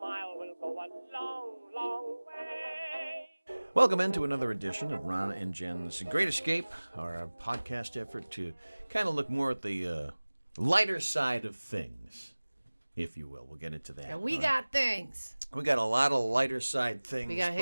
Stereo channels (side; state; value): both; inverted; correlation -1.00